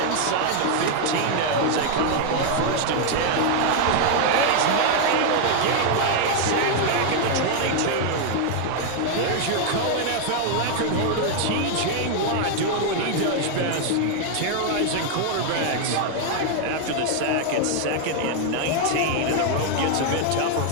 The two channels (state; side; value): different; both; correlation 0.00